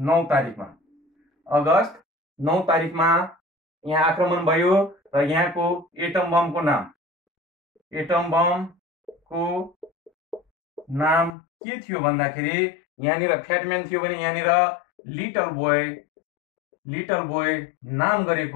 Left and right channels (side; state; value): right; drops out; at 11.4 s